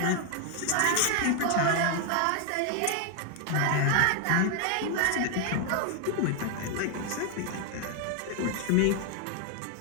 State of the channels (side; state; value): both; different; correlation 0.00